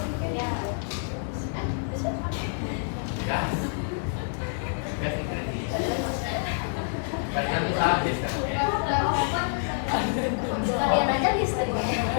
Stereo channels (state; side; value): silent; right; digital silence